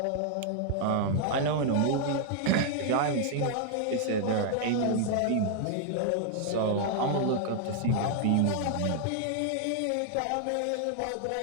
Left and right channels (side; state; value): both; different; correlation -0.01